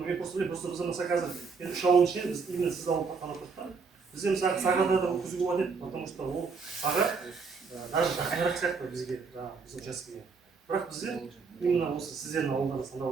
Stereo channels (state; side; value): quieter; left; 5.0 dB